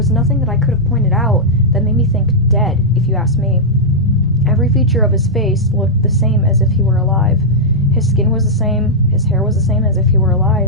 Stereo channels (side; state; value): both; normal; correlation -0.07